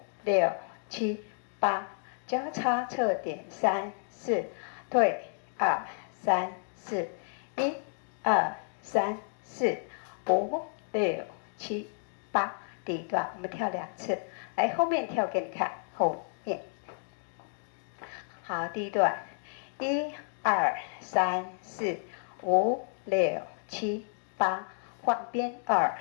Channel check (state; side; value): silent; right; 57 dB below the other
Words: 6、7、8，交叉侧点3、4，退2、3、4，1、2、3、4、5、6、7、8。第1段我们跳2次，来后面跳给你看，后面。好，第1段，1、2、3、4、5、6、7、8，换边2、